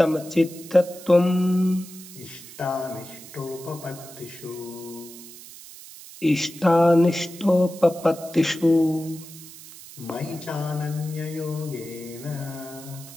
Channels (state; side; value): noise; right; hiss, 17 dB below the sound